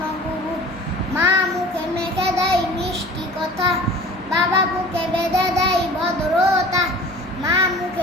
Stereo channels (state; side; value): normal; both; correlation 0.43